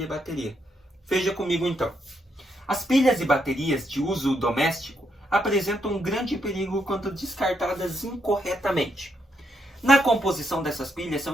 e bateria. Veja comigo então. As pilhas e baterias de uso doméstico apresentam um grande perigo quando descartadas incorretamente. Na composição dessas pilhas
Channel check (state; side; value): normal; both; correlation 0.78